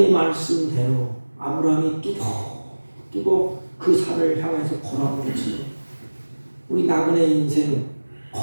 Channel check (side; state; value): both; inverted; correlation -1.00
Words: 말씀대로 아브라함이 뚜벅 그 산을 향해서 걸어가겠지. 우리 나그네 인생